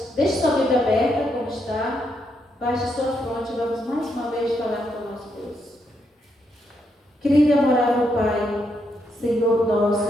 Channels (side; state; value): both; normal; correlation 0.79